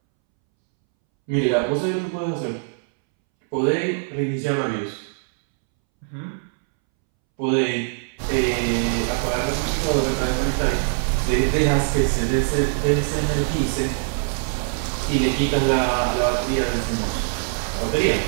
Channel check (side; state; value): left; silent; 64 dB below the other